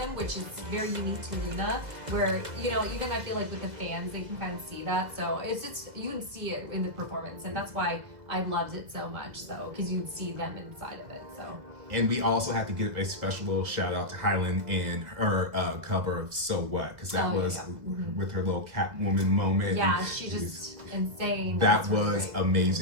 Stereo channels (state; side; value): late; left; 2.0 ms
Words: which is very unique to Loona, where, you know, even I feel like with the fans, they can kind of see that. So it's just, you can see it in the performance, and that's why I loved it so much, so because you can see them inside of it. So. And we also have to give a special little shout out to hyolyn and her cover of So What, because that was with her little Catwoman moment. Yeah, she just insane. That was